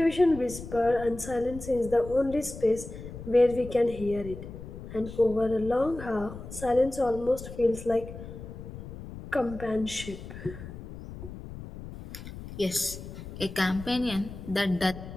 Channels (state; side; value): noise; left; rumble, 12 dB below the sound